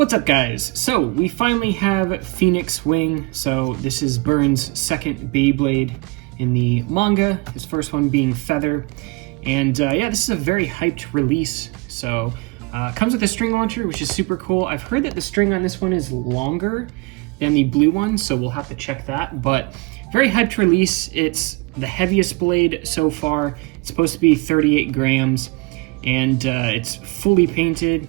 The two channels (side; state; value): left; quieter; 26.4 dB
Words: up, guys? So we finally have Phoenix Wing. So this is Burn's second Beyblade in the manga, his first one being Feather. And yeah, this is a very hyped release. So comes with a string launcher, which is super cool. I've heard that the string on this one is longer than the blue one, so we'll have to check that. But very hyped release. It's the heaviest blade so far. It's supposed to be 38 grams, and it's fully painted.